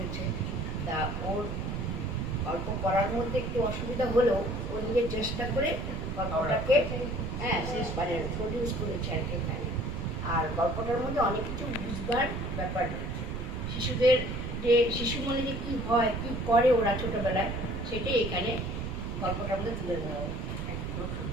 তা ওর গল্প করার মধ্যে একটু অসুবিধা হলেও ও নিজের চেষ্টা করে গল্পটাকে শেষ মানে প্রডিউস করেছে আর কি এখানে। আর গল্পটার মধ্যে অনেক কিছু বুঝবার ব্যাপার রয়েছে। শিশুদের যে শিশু মনে যে কী হয়, কী করে ওরা ছোটোবেলায়, সেটাই এখানে গল্পটার মধ্যে তুলে ধরা হয়।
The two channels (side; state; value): right; noise; rumble, 4 dB below the sound